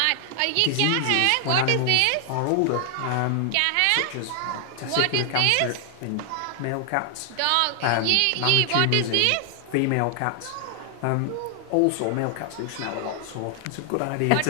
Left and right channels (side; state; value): both; different; correlation 0.00